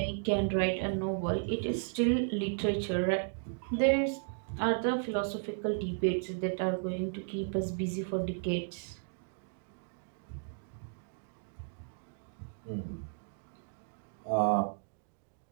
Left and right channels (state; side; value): silent; left; digital silence